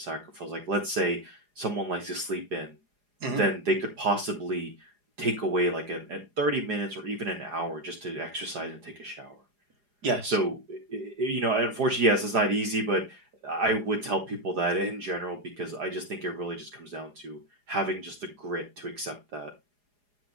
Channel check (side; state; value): left; late; 4.8 ms